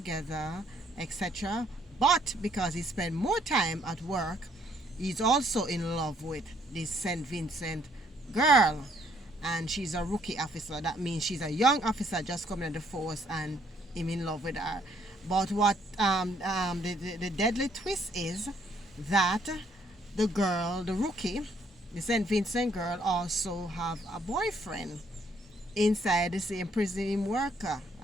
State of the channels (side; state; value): both; normal; correlation 0.67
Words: etc. But because he spent more time at work, he's also in love with this St. Vincent girl, and she's a rookie officer. That means she's a young officer just coming in the force, and him in love with her. But what the deadly twist is that the girl, the rookie, the St. Vincent girl, also have a boyfriend inside the same prison him worker,